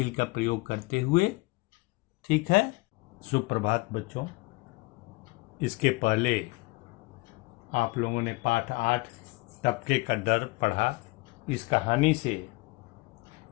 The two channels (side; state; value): right; quieter; 24.5 dB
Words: का प्रयोग करते हुए। ठीक है। सुप्रभात बच्चों। इसके पहले आप लोगों ने पाठ 8 टपके का डर पढ़ा। इस कहानी से,